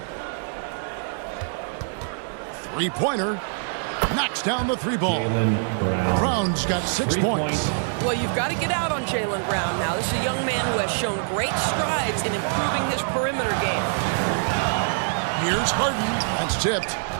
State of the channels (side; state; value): left; silent; digital silence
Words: Three-pointer. Knocks down the 3-ball. Brown's got 6 points. Well, you've got to get out on Jaylen Brown now. This is a young man who has shown great strides in improving his perimeter game. Here's Harden. That's tipped.